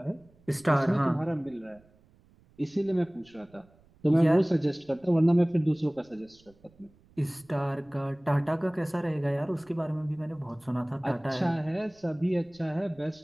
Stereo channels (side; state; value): right; noise; rumble, 29 dB below the sound